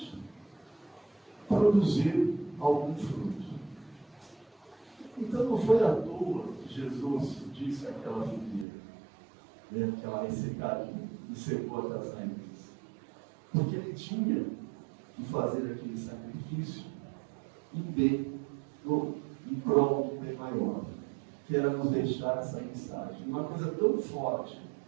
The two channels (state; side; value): drops out; left; at 8.7 s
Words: produzir algum fruto. Então não foi à toa que Jesus disse àquela figueira, que ela ressecaria e secou até as raízes. Porque ele tinha que fazer aquele sacrifício em prol de um bem maior, que era nos deixar essa mensagem. Uma coisa tão forte,